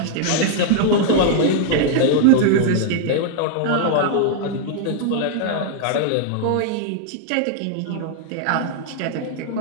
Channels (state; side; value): different; both; correlation -0.01